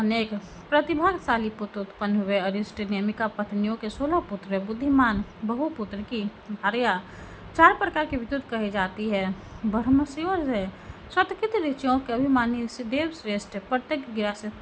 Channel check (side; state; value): both; identical; correlation 1.00